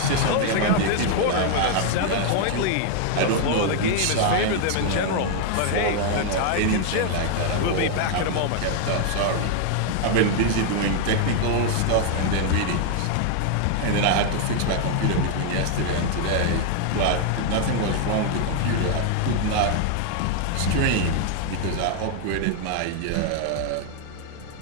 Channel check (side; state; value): both; different; correlation 0.00